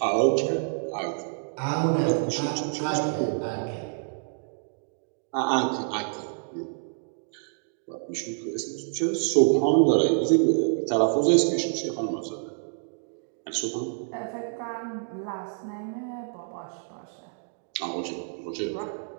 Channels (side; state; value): left; silent; digital silence